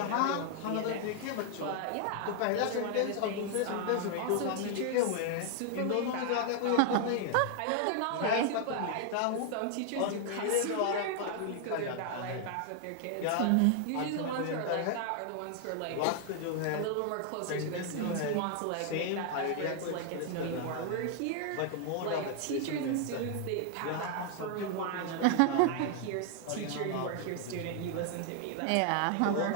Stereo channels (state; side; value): different; both; correlation 0.00